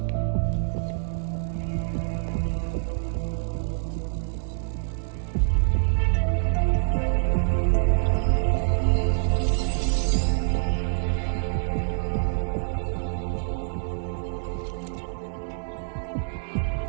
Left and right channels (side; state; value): left; silent; digital silence